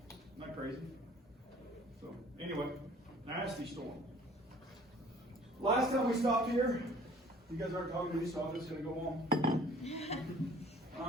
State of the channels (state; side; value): normal; both; correlation 0.53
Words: Isn't that crazy? So, anyway, nasty storm. Last time we stopped here, you guys aren't talking to me, so I'm just going to go on.